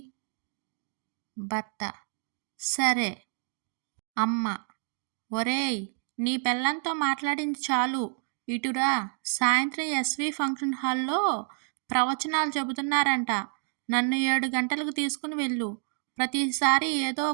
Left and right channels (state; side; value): silent; left; 57 dB below the other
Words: భర్త: సరే. అమ్మ: ఒరేయ్, నీ పెళ్ళాంతో మాట్లాడింది చాలు, ఇటురా. సాయంత్రం ఎస్వి ఫంక్షన్ హాల్లో ప్రవచనాలు చెబుతున్నారంట. నన్ను 7 గంటలకు తీసుకుని వెళ్ళు. ప్రతిసారి ఏదో